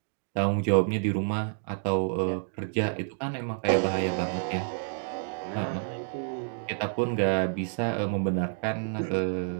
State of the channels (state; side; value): silent; left; digital silence